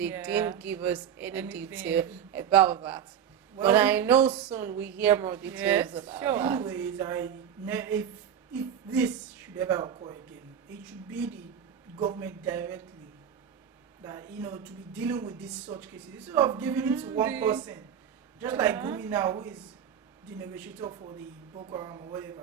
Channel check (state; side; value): quieter; left; 8.8 dB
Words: didn't give us any detail about that. Well, but I know soon we hear more details about that. Anyways, if this should ever occur again, it should be the government directly that to be dealing with these such cases instead of giving it to one person, just like Gumi now, who is the negotiator for the Boko Haram or